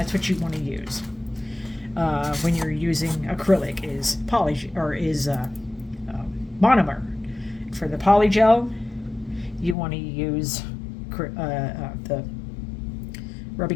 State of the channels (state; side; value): drops out; right; at 9.8 s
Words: want to use when you're using acrylic, is monomer. For the polygel, you want to use the